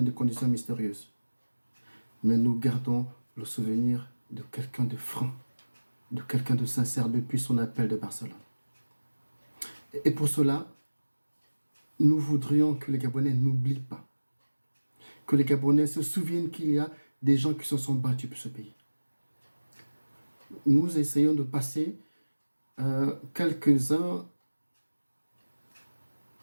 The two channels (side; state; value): both; inverted; correlation -1.00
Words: des conditions mystérieuses, mais nous gardons le souvenir de quelqu'un de franc, de quelqu'un de sincère depuis son appel de Barcelone. Et pour cela, nous voudrions que les Gabonais n'oublient pas, que les Gabonais se souviennent qu'il y a des gens qui se sont battus pour ce pays. Nous essayons de passer quelques-uns